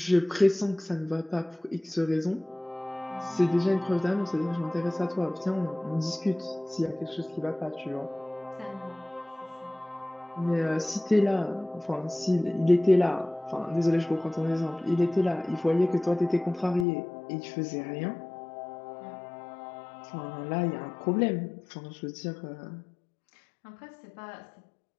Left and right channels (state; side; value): drops out; right; at 16.9 s